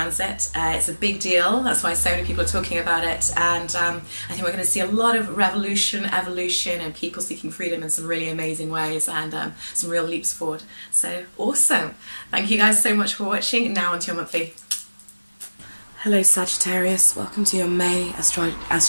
It's a big deal, that's why so many people are talking about it, and I think we're going to see a lot of revolution, evolution, and people seeking freedom in some really amazing ways, and some real leaps forward. So awesome. Thank you guys so much for watching. Now onto your monthly. Hello Sagittarius, welcome to your May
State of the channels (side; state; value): both; inverted; correlation -1.00